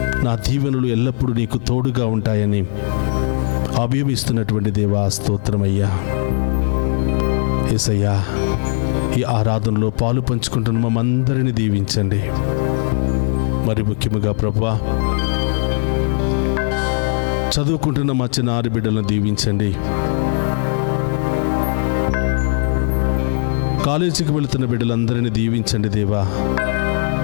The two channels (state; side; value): silent; right; 67 dB below the other